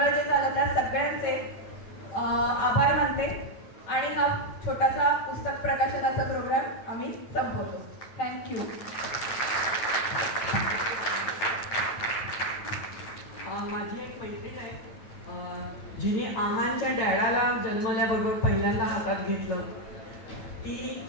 जे झालं त्या सगळ्यांचे आभार मानते. आणि हा छोटासा पुस्तक प्रकाशनाचा प्रोग्राम आम्ही संपवतो. थँक्यू. माझी एक मैत्रीण आहे, जिने आहांच्या डॅडाला जन्मल्याबरोबर पहिल्यांदा हातात घेतलं. ती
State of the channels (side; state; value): right; late; 9.0 ms